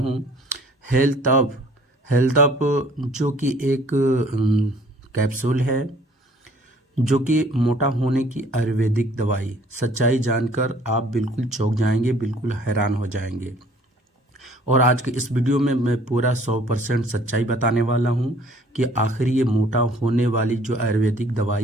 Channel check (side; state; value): both; normal; correlation 0.56